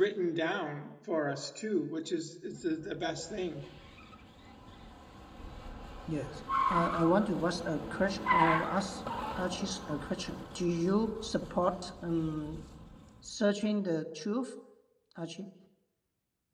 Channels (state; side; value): identical; both; correlation 1.00